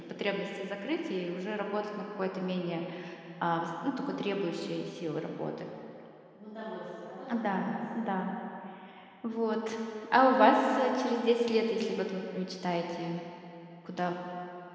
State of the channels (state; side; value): identical; both; correlation 1.00